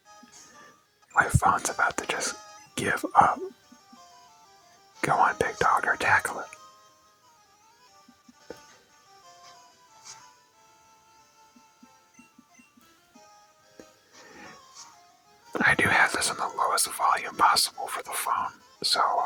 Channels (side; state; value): both; identical; correlation 1.00